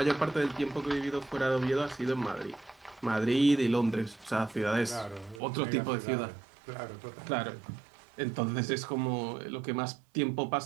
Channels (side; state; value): left; drops out; at 5.4 s